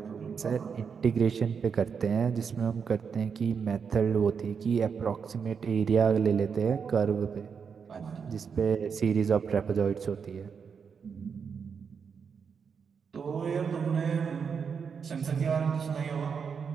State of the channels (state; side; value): quieter; left; 6.3 dB